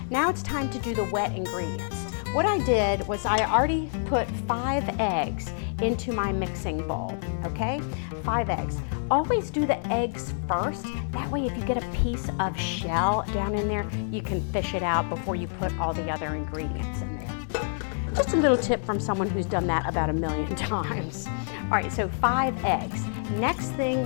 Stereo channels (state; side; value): silent; right; digital silence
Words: Now it's time to do the wet ingredients. What I did was I already put 5 eggs into my mixing bowl, okay? 5 eggs. Always do the eggs first. That way if you get a piece of shell down in there, you can fish it out before you put all the other ingredients in there. Just a little tip from someone who's done that about 1,000,000 times. All right, so 5 eggs. Next